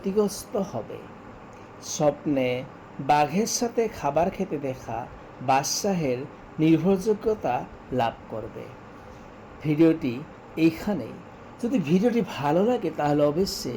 হবে। স্বপ্নে বাঘের সাথে খাবার খেতে দেখা বাদশাহের নির্ভরযোগ্যতা লাভ করবে। ভিডিওটি এইখানেই। যদি ভিডিওটি ভালো লাগে তাহলে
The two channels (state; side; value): identical; both; correlation 1.00